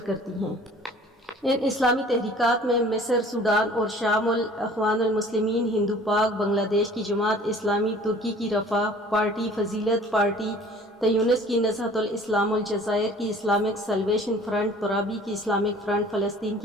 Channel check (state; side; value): normal; both; correlation 0.50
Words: کرتی ہیں۔ ان اسلامی تحریکات میں مصر، سوڈان اور شام الاخوان المسلمین، ہندو پاک، بنگلہ دیش کی جماعت اسلامی، ترکی کی رفاہ پارٹی، فضیلت پارٹی، تیونس کی نہضت الاسلام، الجزائر کی اسلامک سلویشن فرنٹ، ترابی کی اسلامک فرنٹ، فلسطین